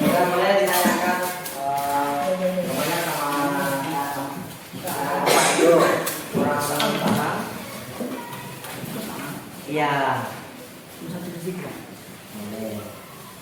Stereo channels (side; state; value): both; identical; correlation 1.00